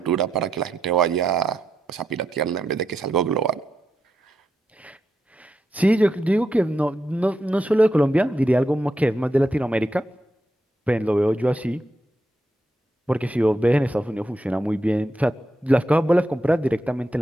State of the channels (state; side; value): normal; both; correlation 0.84